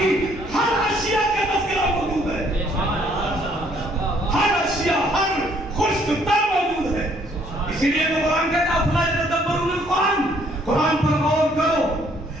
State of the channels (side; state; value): both; normal; correlation 0.64